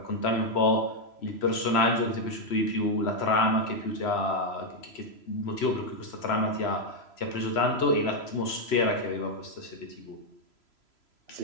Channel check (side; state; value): right; late; 3.0 ms